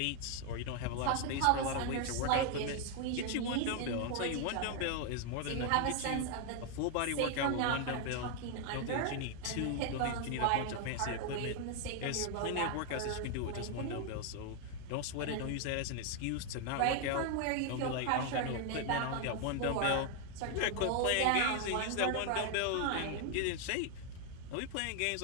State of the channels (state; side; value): different; both; correlation 0.01